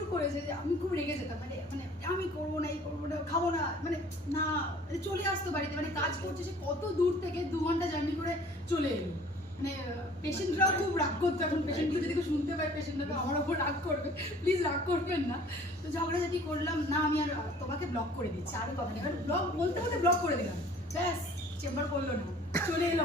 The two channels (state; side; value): normal; both; correlation 0.51